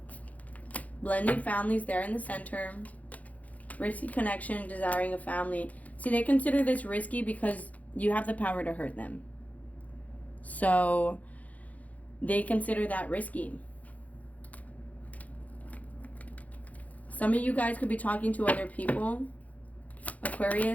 Blending families there in the center. Risky connection, desiring a family. See, they consider this risky because you have the power to hurt them. So they consider that risky. Some of you guys could be talking to other people.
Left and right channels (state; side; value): late; right; 0.072 ms